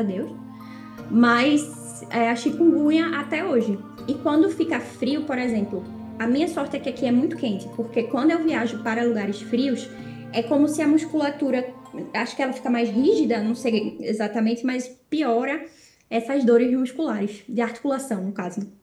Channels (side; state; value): both; identical; correlation 1.00